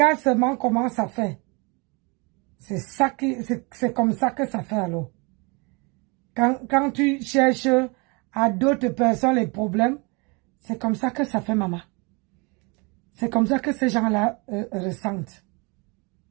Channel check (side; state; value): left; quieter; 29.8 dB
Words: seulement comment ça fait. C'est comme ça que ça fait alors. Quand tu cherches à d'autres personnes les problèmes, c'est comme ça que ça fait, maman. C'est comme ça que ces gens-là ressentent.